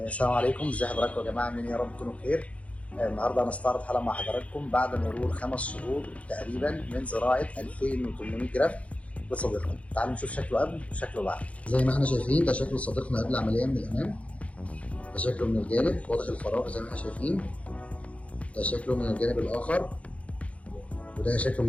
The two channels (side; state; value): right; late; 0.064 ms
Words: عليكم، ازي حضراتكم يا جماعه؟ عاملين ايه؟ يا رب تكونوا بخير. النهارده هنستعرض حلقه مع حضراتكم بعد مرور 5 شهور تقريبا من زراعه 2800 جرافت لصديقنا. تعالوا نشوف شكله قبل وشكله بعد. زي ما احنا شايفين ده شكل صديقنا قبل العمليه من الامام، ده شكله من الجانب واضح الفراغ زي ما احنا شايفين، ده شكله من الجانب الاخر، وده شكله